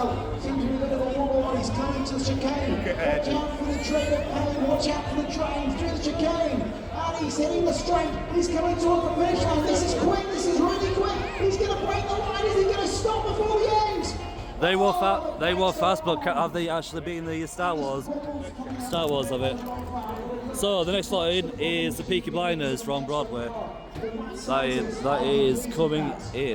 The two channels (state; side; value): identical; both; correlation 1.00